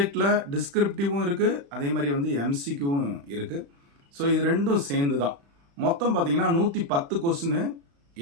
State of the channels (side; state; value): left; late; 35 ms